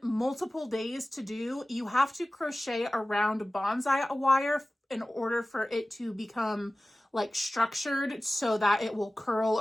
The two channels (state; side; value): normal; both; correlation 0.97